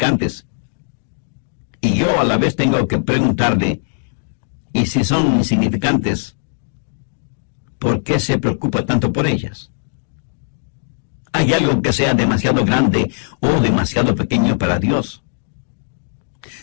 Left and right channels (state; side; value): silent; right; digital silence